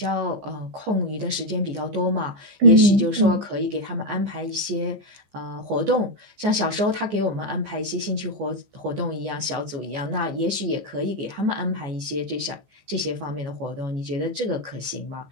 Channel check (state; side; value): late; left; 14 ms